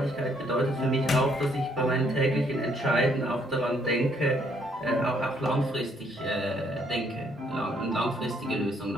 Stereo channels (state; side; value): normal; both; correlation 0.68